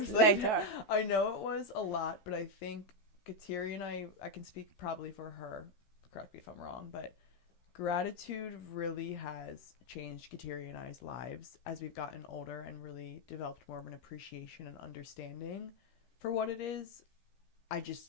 later. I know it was a lot, but I think Kateri and I can speak probably for her, correct me if I'm wrong, but gratitude really has changed Kateri and I's lives as we've gotten older and really developed more of an appreciation and understanding for what it is. I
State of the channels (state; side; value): late; right; 15 ms